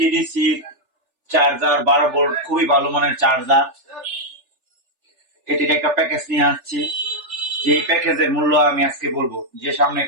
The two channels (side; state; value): left; late; 3.4 ms